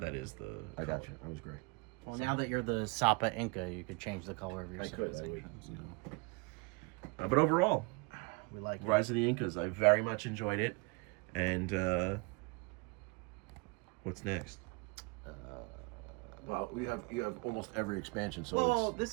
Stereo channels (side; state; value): left; quieter; 29.8 dB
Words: is the. I got color. you. I was gray. Well, now that you're the Sapa Inca, you could change the color of your I could. I would. civilizations. You know. But overall, We like it. Rise of the Incas, I very much enjoyed it. And what's next? Well, you have almost every expansion. So Well,